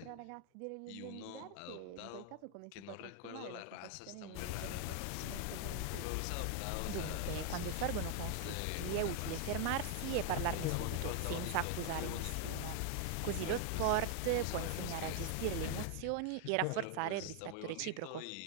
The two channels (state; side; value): different; both; correlation 0.00